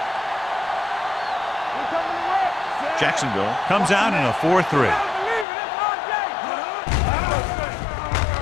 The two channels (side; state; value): right; drops out; at 5.5 s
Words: Jacksonville comes out in a 4-3.